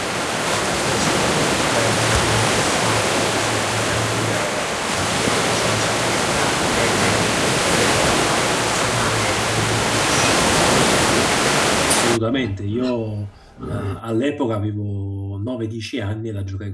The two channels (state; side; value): identical; both; correlation 1.00